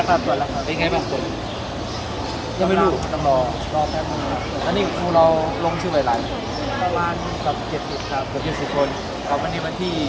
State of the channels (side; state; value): both; identical; correlation 1.00